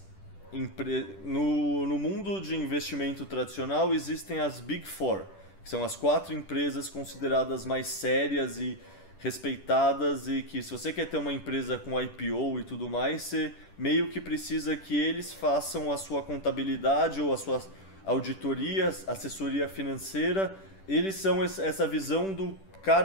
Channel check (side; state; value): right; late; 10 ms